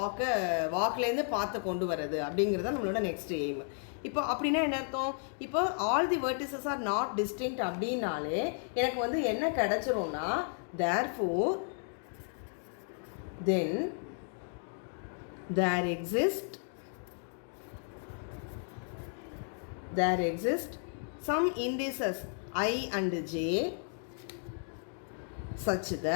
வாக்லேருந்து பார்த்து கொண்டு வரது அப்படிங்கிறது நம்மளோட நெக்ஸ்ட் எய்ம். இப்போ அப்படின்னா என்ன அர்த்தம்? இப்போ all the vertices are not distinct அப்படின்னாலே எனக்கு வந்து என்ன கிடச்சிரும்னா, therefore then there exist some indices I and j such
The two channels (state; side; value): silent; right; 55 dB below the other